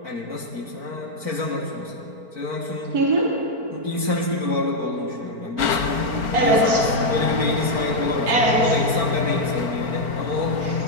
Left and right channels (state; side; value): late; left; 4.4 ms